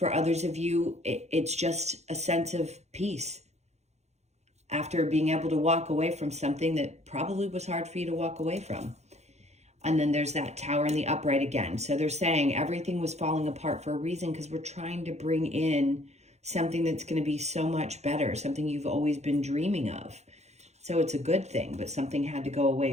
others of you, it's just a sense of peace after being able to walk away from something that probably was hard for you to walk away from. And then there's that Tower and the upright again. So they're saying everything was falling apart for a reason, because we're trying to bring in something that's going to be so much better, something you've always been dreaming of. So it's a good thing, but something had to go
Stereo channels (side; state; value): left; late; 0.32 ms